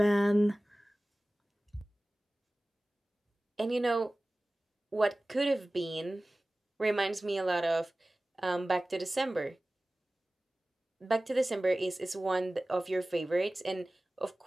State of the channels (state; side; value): normal; both; correlation 0.97